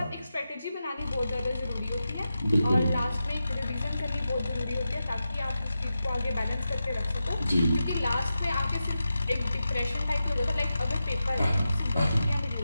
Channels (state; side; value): inverted; both; correlation -0.91